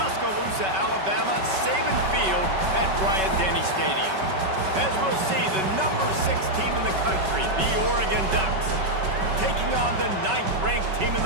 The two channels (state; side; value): late; left; 5.3 ms